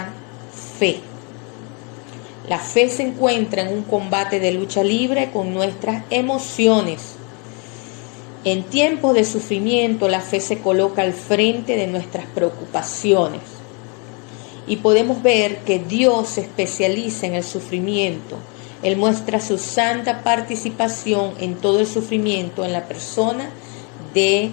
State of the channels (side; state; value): right; quieter; 34.5 dB